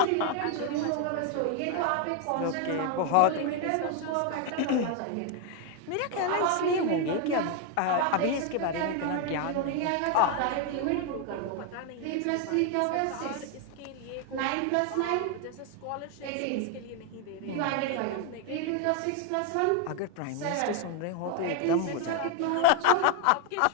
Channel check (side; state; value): both; different; correlation 0.00